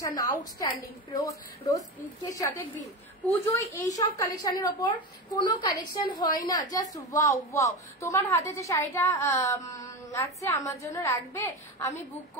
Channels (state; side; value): normal; both; correlation 0.21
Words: outstanding, rose পিঙ্কের সাথে গ্রিন। পুজোয় এইসব কালেকশনের ওপর কোনো কালেকশন হয় না, জাস্ট ওয়াও ওয়াও। তোমার হাতে যে শাড়িটা আছে আমার জন্য রাখবে, আমি বুক